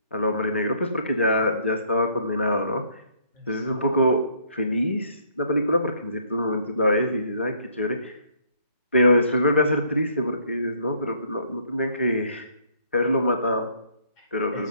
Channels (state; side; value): inverted; both; correlation -0.65